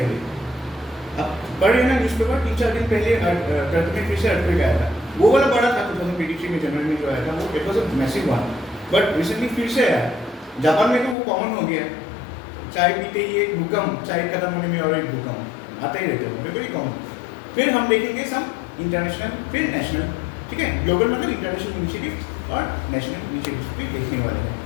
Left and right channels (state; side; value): drops out; right; at 11.2 s